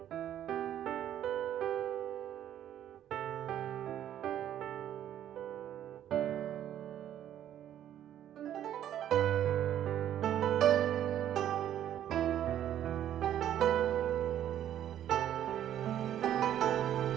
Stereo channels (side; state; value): left; quieter; 11.0 dB